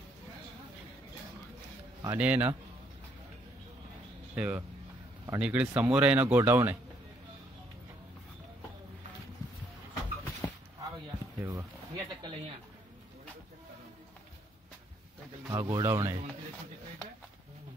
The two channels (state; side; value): normal; both; correlation 0.70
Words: आणि ना हे बघा, आणि इकडे समोर आहे ना गोडाऊन आहे। हे बघा हा गोडाऊन आहे।